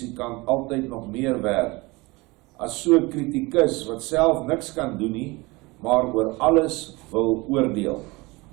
altyd nog meer werd as so 'n kritikus wat self niks kan doen nie, maar oor alles wil oordeel.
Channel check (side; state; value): left; quieter; 23.9 dB